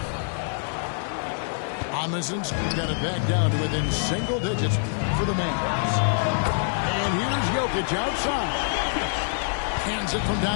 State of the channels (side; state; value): right; silent; digital silence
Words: Amundsen's got it back down to within single digits for the Mavs. And here's Jokic outside. Hands it from